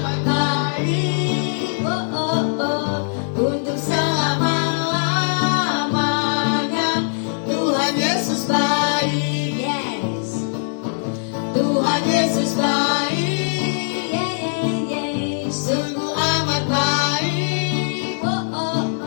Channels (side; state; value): right; silent; 65 dB below the other